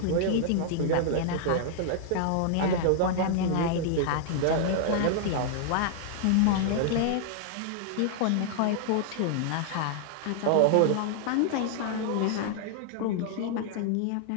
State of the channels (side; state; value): both; different; correlation -0.01